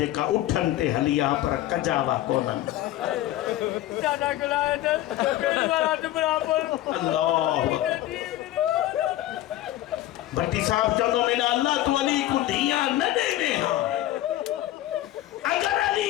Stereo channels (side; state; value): right; quieter; 14.6 dB